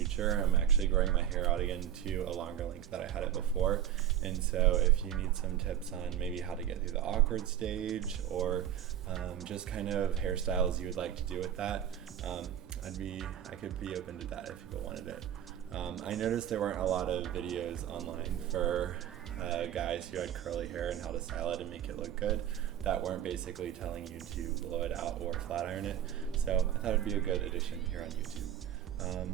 I'm actually growing my hair out again to a longer length that I had it before. And so if you need some tips on maybe how to get through the awkward stage, or just kind of hairstyles you would like to do with that, I could be open to that if people wanted it. I noticed there weren't a lot of videos online for guys who had curly hair and how to style it and make it look good, that weren't basically telling you to blow it out or flat iron it. So I thought it'd be a good addition here on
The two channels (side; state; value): left; quieter; 10.6 dB